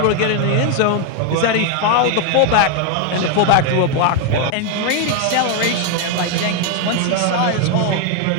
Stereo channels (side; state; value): both; different; correlation 0.01